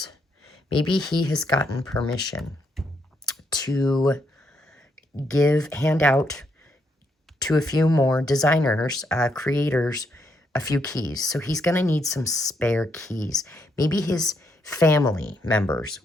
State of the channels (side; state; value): both; normal; correlation 0.76